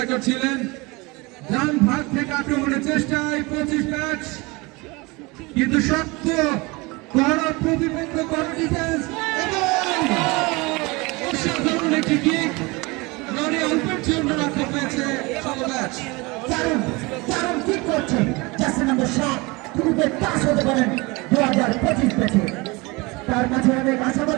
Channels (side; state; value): left; quieter; 25.0 dB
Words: ছিলেন। ডান ভাগ থেকে আক্রমণের চেষ্টায় 25 ব্যাচ, কিন্তু শক্ত কড়া প্রতিপক্ষ, কড়া ডিফেন্স এবং অসাধারণ একটি কিক। লরি অল্পের জন্য রক্ষা পেয়েছে 16 ব্যাচ। দারুণ ঠিক করছেন জার্সি নাম্বার 7 গ্রুপের পাস হতে পারেন 2025 ব্যাচে। তার মাঝে অনেক